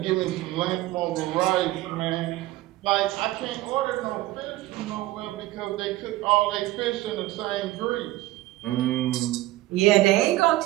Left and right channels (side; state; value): left; quieter; 17.0 dB